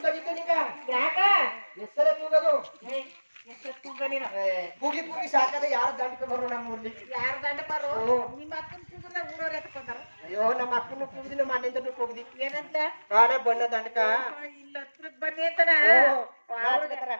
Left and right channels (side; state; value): both; inverted; correlation -1.00